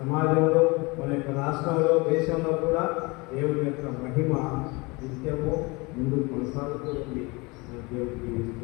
సమాజంలో, మన యొక్క రాష్ట్రంలో, దేశంలో కూడా దేవుని యొక్క మహిమ నిత్యము ముందుకు కొనసాగుతూ ఉంది. మన దేవుడు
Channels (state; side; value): quieter; right; 26.1 dB